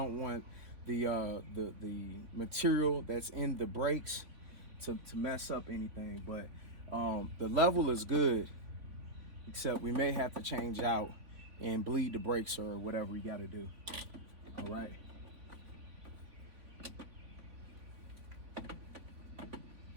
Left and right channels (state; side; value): late; left; 3.6 ms